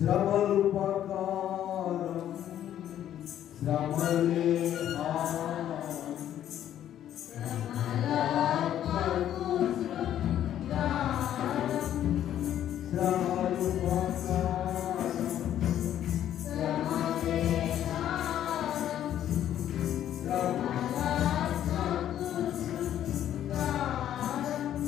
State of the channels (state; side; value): quieter; right; 11.1 dB